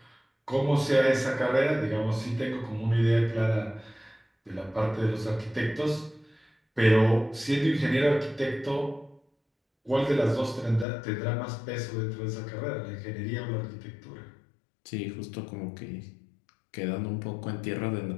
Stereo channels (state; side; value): drops out; right; at 10.9 s